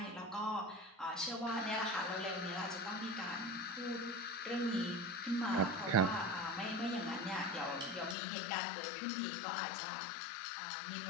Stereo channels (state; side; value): drops out; right; at 8.2 s